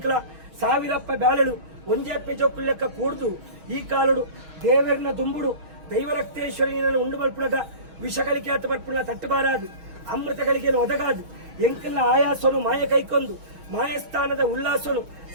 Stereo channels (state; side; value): late; left; 6.3 ms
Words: ಸಾವಿರಪ್ಪ ಬ್ಯಾಳಳು ಒಂಜೆಪ್ಪೆ ಜೋಕುಳ್ಳೆಕ್ಕ ಕೂಡ್ದು ಈ ಕಾಲುಡು ದೇವರನ ದುಂಬುಡು ದೈವರಕ್ತೇಶ್ವರಿಯನ್ನು ಉಂಡು ಬಲ್ಪುಣದ ವಿಷಗಳಿಗೆ ಆತ ಬರ್ಪುಣ ತಟ್ಟುಬಾರಾದು ಅಮೃತಗಳಿಗೆ ಒದಗಾದು ಎಂಕಲ್ನ ಆಯಾಸನು ಮಾಯ ಕೈಕೊಂದು ಮಾಯಸ್ಥಾನದ ಉಲ್ಲಾಸನು